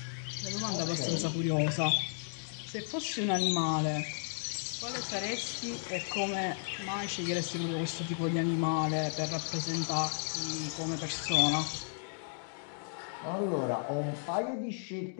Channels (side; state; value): right; silent; digital silence